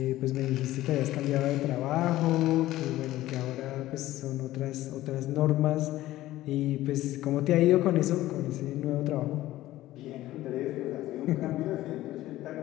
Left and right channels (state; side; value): quieter; right; 15.6 dB